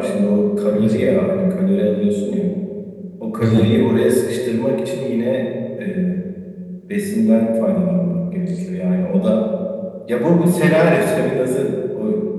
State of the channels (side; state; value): both; identical; correlation 1.00